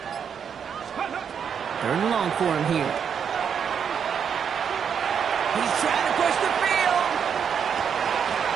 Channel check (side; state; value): left; quieter; 7.4 dB